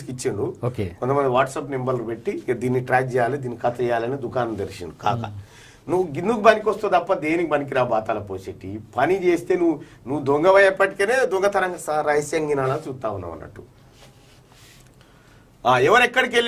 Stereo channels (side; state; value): both; identical; correlation 1.00